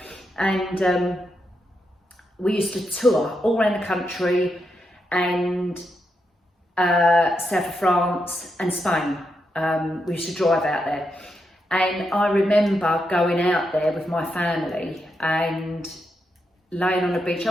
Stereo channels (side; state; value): both; normal; correlation 0.83